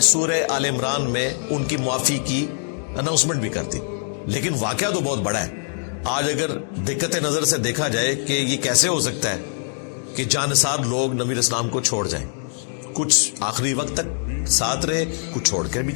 سورہ آل عمران میں ان کی معافی کی اناؤنسمنٹ بھی کر دی. لیکن واقعہ تو بہت بڑا ہے. آج اگر دقت نظر سے دیکھا جائے کہ یہ کیسے ہو سکتا ہے کہ جانثار لوگ نبی علیہ السلام کو چھوڑ جائیں. کچھ آخری وقت تک ساتھ رہے, کچھ چھوڑ کر بھی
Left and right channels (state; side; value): silent; right; 64 dB below the other